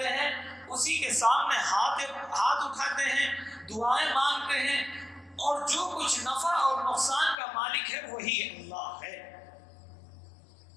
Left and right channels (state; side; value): drops out; right; at 7.4 s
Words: ہیں، اسی کے سامنے ہاتھ اٹھاتے ہیں، دعائیں مانگتے ہیں، اور جو کچھ نفع اور نقصان کا مالک ہے وہی اللہ ہے۔